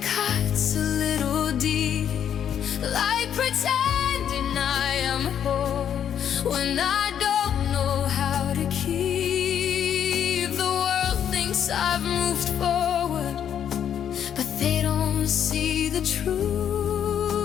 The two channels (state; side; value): quieter; right; 9.2 dB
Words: cuts a little deep, like pretending I am whole when I don't know how to keep. I've moved forward, but they don't see the truth.